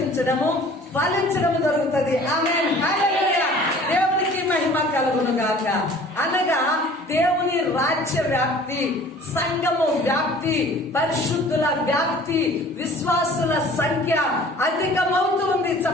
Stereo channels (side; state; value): both; normal; correlation 0.48